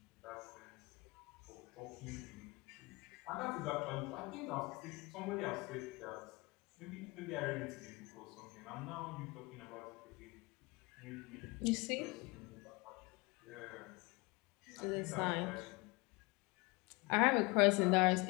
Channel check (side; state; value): right; quieter; 25.4 dB